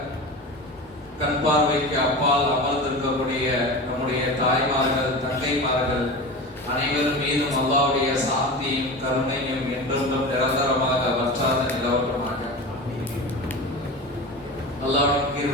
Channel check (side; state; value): both; normal; correlation 0.29